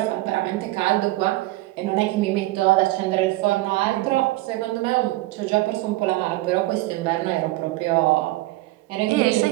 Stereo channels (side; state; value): left; quieter; 18.9 dB